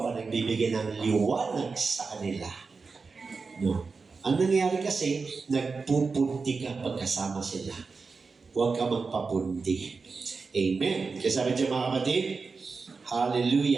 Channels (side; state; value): left; quieter; 4.5 dB